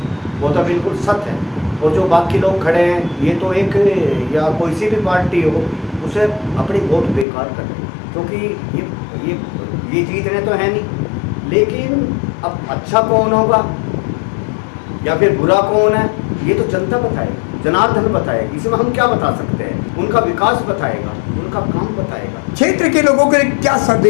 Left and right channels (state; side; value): drops out; right; at 7.2 s